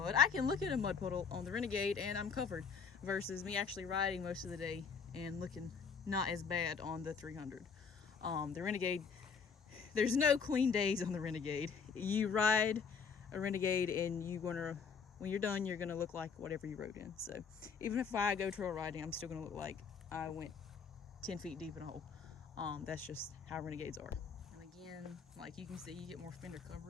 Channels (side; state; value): right; quieter; 6.0 dB